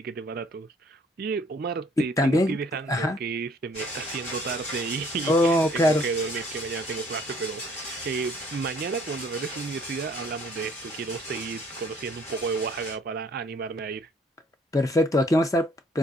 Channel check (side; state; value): both; normal; correlation 0.59